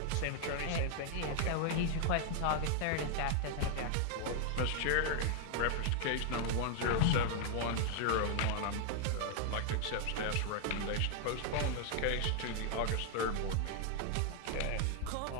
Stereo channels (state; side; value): different; both; correlation 0.00